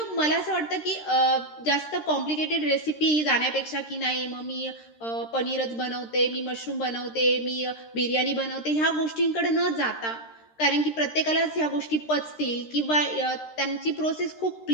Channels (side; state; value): right; late; 13 ms